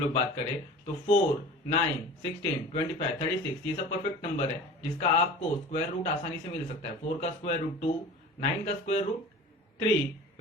बात करें तो 4, 9, 16, 25, 36 ये सब परफेक्ट नंबर है जिसका आपको स्क्वायर रूट आसानी से मिल सकता है। 4 का स्क्वायर रूट 2, 9 का स्क्वायर रूट 3,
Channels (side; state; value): both; normal; correlation 0.38